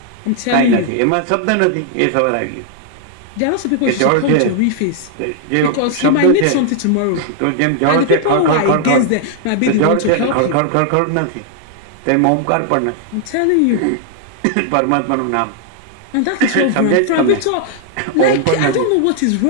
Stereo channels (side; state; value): both; different; correlation 0.00